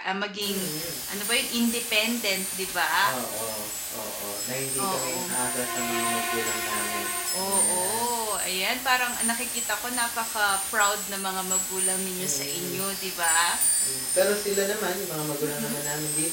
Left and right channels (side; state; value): both; identical; correlation 1.00